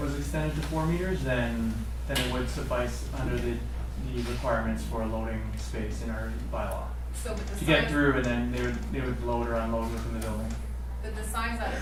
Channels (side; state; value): both; identical; correlation 1.00